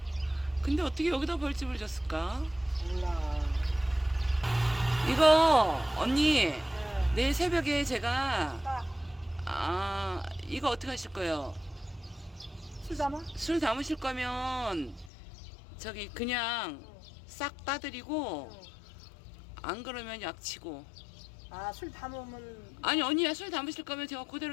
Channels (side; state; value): right; drops out; at 15.1 s